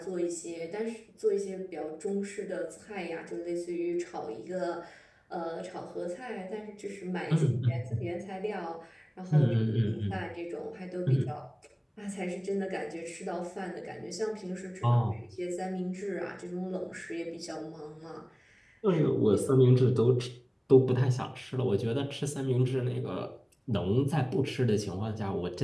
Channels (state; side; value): identical; both; correlation 1.00